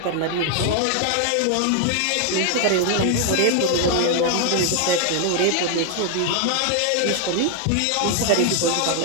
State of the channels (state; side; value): different; both; correlation 0.00